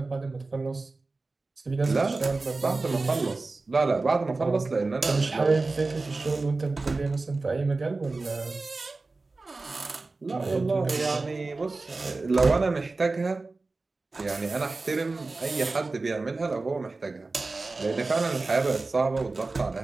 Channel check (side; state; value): left; quieter; 3.6 dB